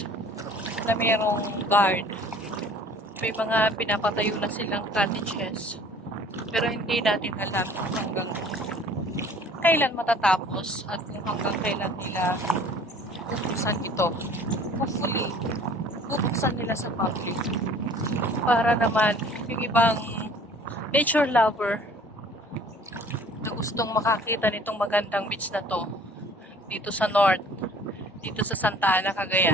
na mayroong guard. May mga pinapatayo na silang cottages. Pero hindi natin alam kung hanggang kailan matatapos at kung hanggang kailan nila bubuksan ito. Hopefully, bubuksan nila sa public. Para naman yung ibang nature lover na gustong makakita nitong magandang beach na to dito sa north, dito sa Santa Ana,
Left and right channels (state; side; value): normal; both; correlation 0.51